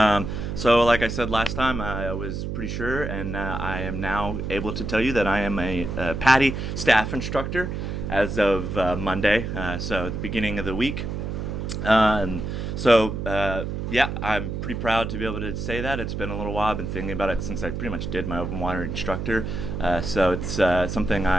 So like I said last time, I was pretty sure, and I am now able to tell you that I am a PADI Staff Instructor as of Monday, so at the beginning of the week. Yeah, I'm pretty proud to be able to say that. It's been a little while. I've been thinking about it since I pretty much did my open water instructor. So it's something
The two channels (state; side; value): noise; right; hum, 4 dB below the sound